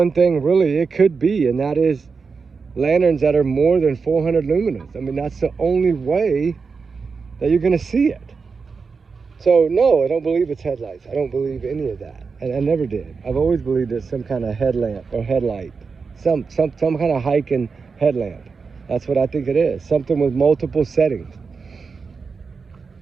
thing really it could be, and that is lanterns that are more than 400 lumens. I mean, that's the only way that you're going to see it. So, no, I don't believe it's headlights. I don't believe any of that. And I never did. I've always believed it's some kind of headlamp or headlight. Some kind of hiking headlamp. That's what I think it is. Something with multiple settings.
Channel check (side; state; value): left; quieter; 5.0 dB